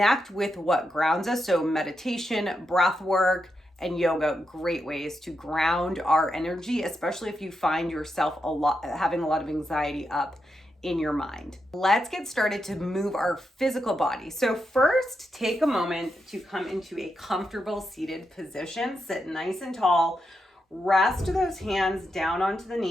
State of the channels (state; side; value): normal; both; correlation 0.85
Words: with what grounds us. So meditation, breath work, and yoga, great ways to ground our energy, especially if you find yourself having a lot of anxiety up in your mind. Let's get started to move our physical body. So first, take a moment to come into a comfortable seated position. Sit nice and tall. Rest those hands down onto the